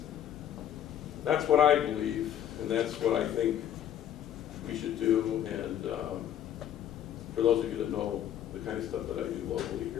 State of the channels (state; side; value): quieter; right; 10.4 dB